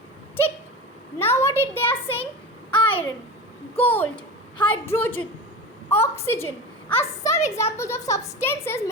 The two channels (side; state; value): both; normal; correlation 0.28